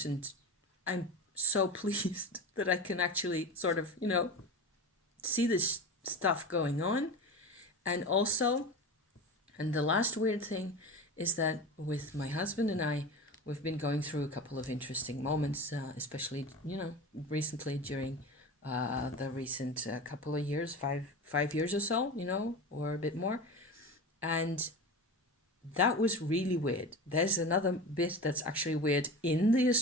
And I'm so pleased that I can actually sort of, see this stuff going on. And also, and the last weird thing is that with my husband and I, we've been going through a couple of interesting moments, especially, recently during the recent couple of years, five years or so, or a bit more. And that was really weird. There's another bit that's actually weird in the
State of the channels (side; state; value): both; normal; correlation 0.28